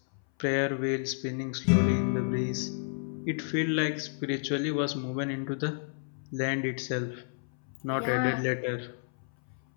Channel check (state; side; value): silent; right; 57 dB below the other